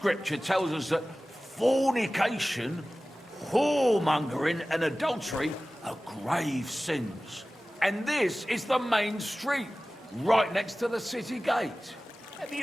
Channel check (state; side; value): normal; both; correlation 0.97